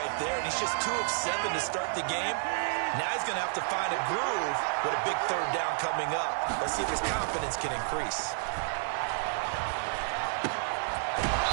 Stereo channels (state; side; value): silent; left; digital silence